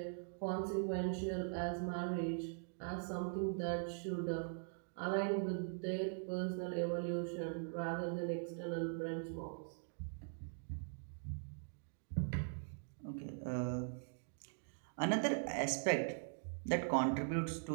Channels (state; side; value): silent; left; digital silence